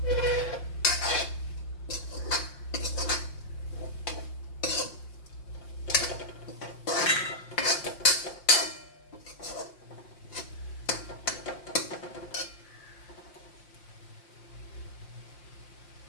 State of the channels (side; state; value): right; late; 5.7 ms